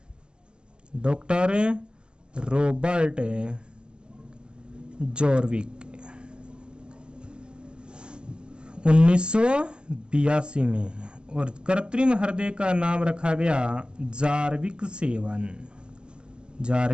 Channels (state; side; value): late; left; 0.049 ms